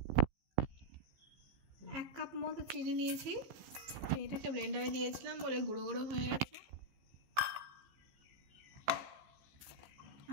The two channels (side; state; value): left; late; 15 ms